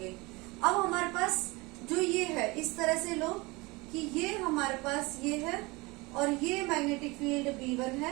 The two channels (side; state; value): left; quieter; 24.4 dB